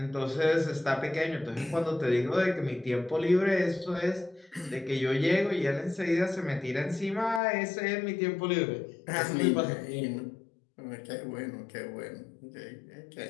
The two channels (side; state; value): right; drops out; at 7.4 s